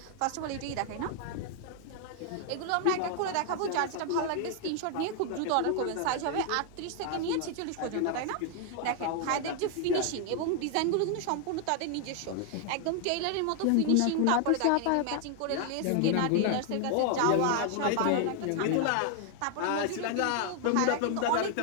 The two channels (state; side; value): different; both; correlation 0.00